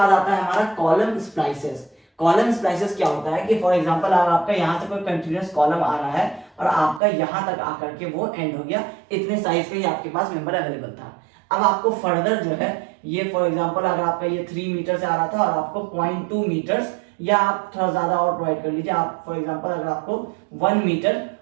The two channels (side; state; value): left; drops out; at 7.0 s